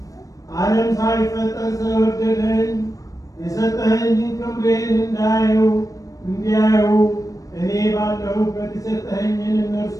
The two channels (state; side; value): late; right; 0.16 ms